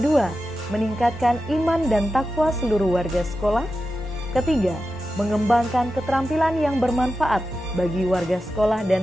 meningkatkan iman dan takwa seluruh warga sekolah. Ketiga, mengembangkan keterampilan yang bermanfaat bagi warga sekolah dan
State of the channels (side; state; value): both; normal; correlation 0.91